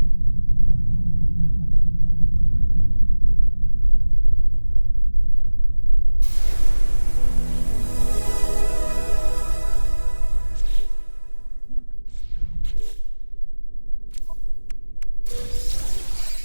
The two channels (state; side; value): inverted; both; correlation -1.00